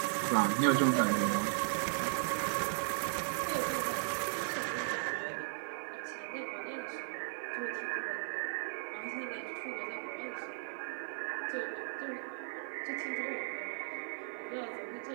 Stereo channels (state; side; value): silent; left; 53 dB below the other